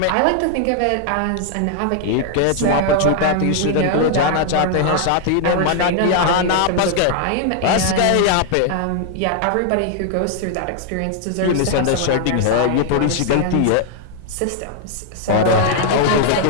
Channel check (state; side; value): different; both; correlation 0.00